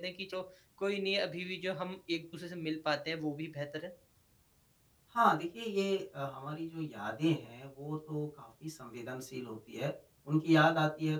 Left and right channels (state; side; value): identical; both; correlation 1.00